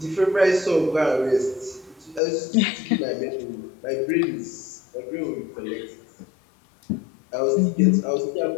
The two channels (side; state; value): right; drops out; at 2.2 s